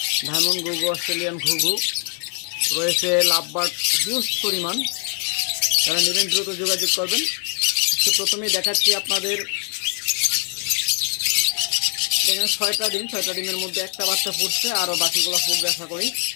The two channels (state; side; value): quieter; right; 36.8 dB